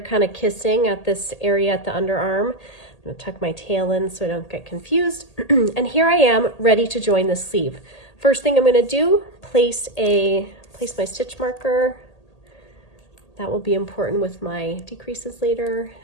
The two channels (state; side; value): late; right; 1.8 ms